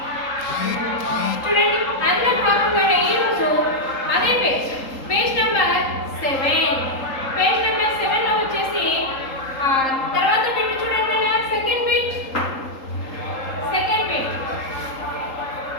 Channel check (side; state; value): right; late; 3.8 ms